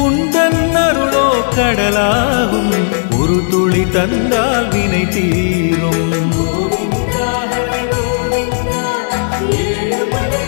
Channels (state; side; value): silent; right; digital silence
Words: உந்தன் அருளோ கடலாகும், ஒரு துளி தந்தால் வினை தீரும்.